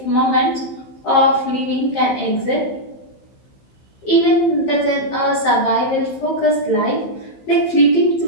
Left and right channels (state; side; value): late; right; 15 ms